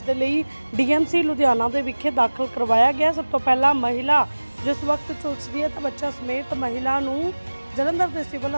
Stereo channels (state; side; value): inverted; both; correlation -1.00